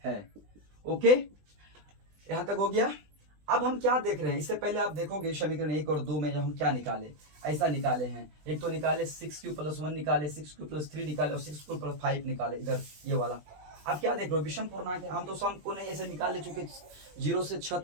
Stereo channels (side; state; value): left; late; 20 ms